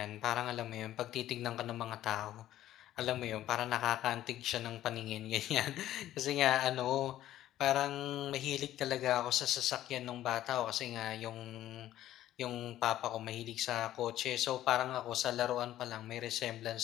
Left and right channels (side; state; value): right; quieter; 13.2 dB